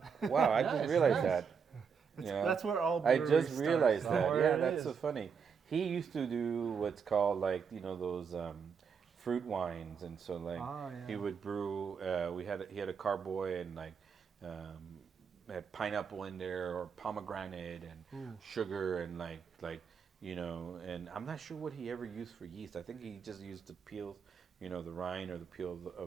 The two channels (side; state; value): left; quieter; 6.4 dB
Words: Wow, I just realized that. You know, That's where all I breweries just realized start. that. where Yeah, it that's is. so funny. He used to do what's called like those fruit wines, and so like he yeah. would brew. He had a carboy and like had pineapple in there or pomegranate and sugar and like and I'm not sure what he ever used for yeast. I think he just used the peels, the rind or the peel